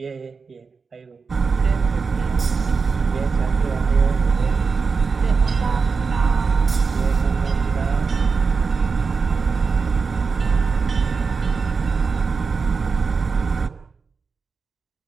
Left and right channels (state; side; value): quieter; left; 5.0 dB